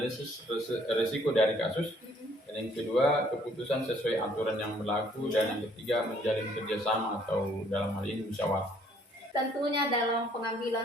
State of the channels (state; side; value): normal; both; correlation 0.63